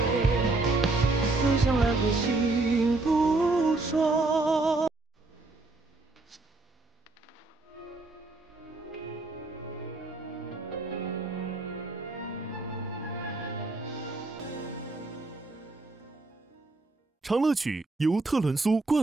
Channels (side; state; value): left; quieter; 3.2 dB